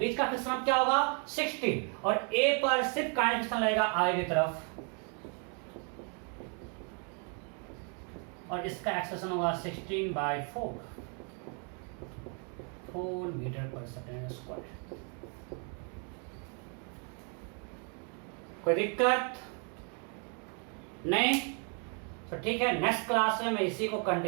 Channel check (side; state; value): left; quieter; 39.0 dB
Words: का फ्रिक्शन क्या होगा 16 और ए पर सिर्फ काइनेटिक फ्रिक्शन लगेगा आई की तरफ और इसका एक्सेलेरेशन होगा 16/4 4 मीटर पर सेकेंड स्क्वायर। कोई दिक्कत नहीं? तो ठीक है, नेक्स्ट क्लास में मैं इसी को